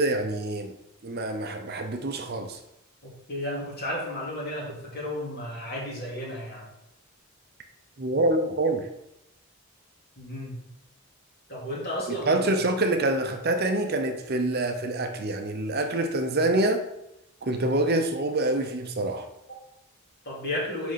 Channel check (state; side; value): normal; both; correlation 0.06